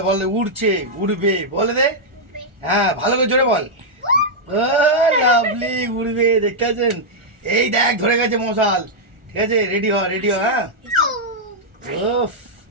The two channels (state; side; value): late; left; 1.4 ms